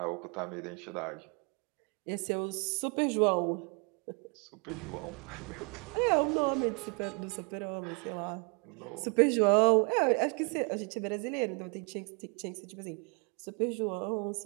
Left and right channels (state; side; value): quieter; left; 35.4 dB